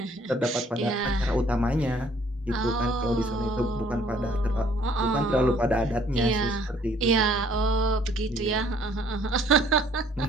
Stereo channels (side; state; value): both; normal; correlation 0.60